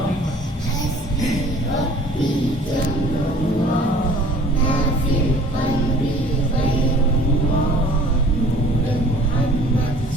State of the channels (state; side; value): normal; both; correlation 0.50